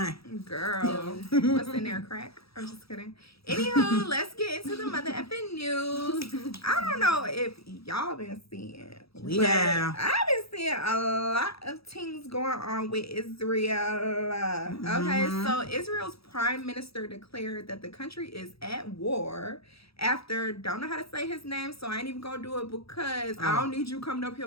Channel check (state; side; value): late; right; 0.77 ms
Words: Girl, what's in there? Crack? I'm just kidding. Anywho, let's get into the mother effing news. I don't know if y'all been seeing. We but have. I've been seeing a lot of things going on with Israel. Okay, so Israel's prime minister declared that the country is at war after, don't know how to say his name, so I ain't even gonna do it because I don't need you coming up